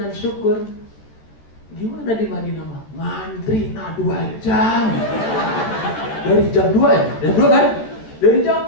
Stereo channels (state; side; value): late; right; 13 ms